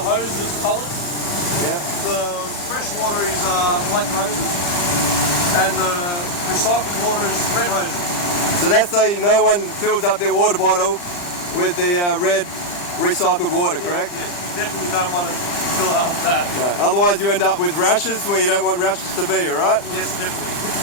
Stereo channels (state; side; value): late; right; 40 ms